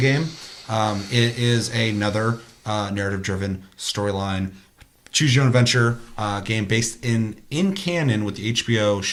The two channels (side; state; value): both; identical; correlation 1.00